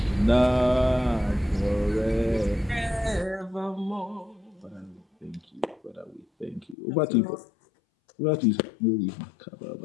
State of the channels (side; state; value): right; drops out; at 6.8 s